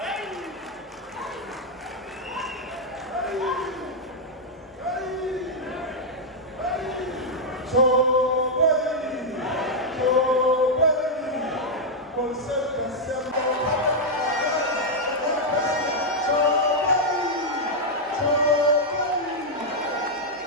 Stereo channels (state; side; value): normal; both; correlation -0.03